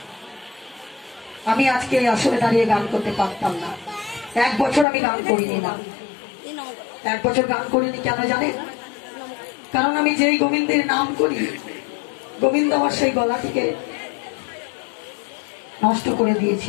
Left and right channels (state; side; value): drops out; right; at 4.9 s